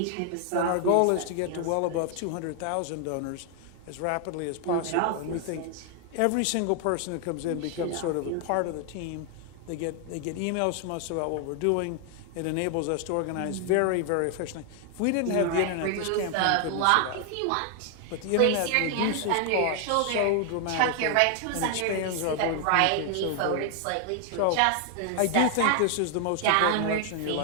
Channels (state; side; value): different; both; correlation 0.00